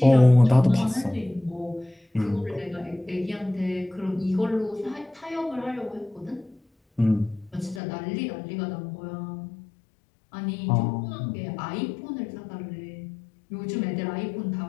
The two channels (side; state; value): right; drops out; at 7.8 s